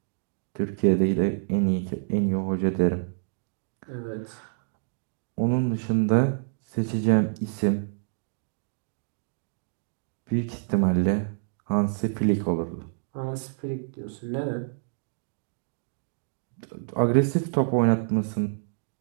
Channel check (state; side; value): silent; left; digital silence